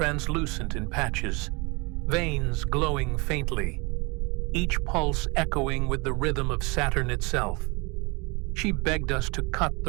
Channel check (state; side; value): quieter; left; 28.0 dB